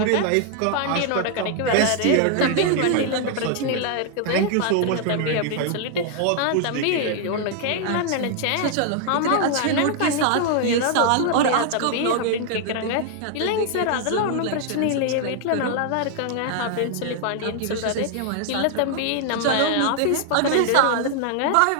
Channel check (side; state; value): both; different; correlation 0.00